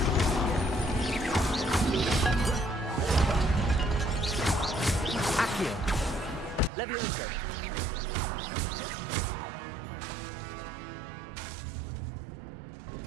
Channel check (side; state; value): left; drops out; at 6.7 s